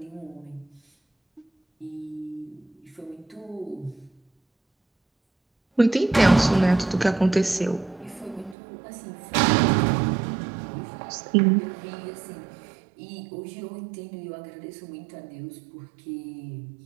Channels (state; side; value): drops out; left; at 8.6 s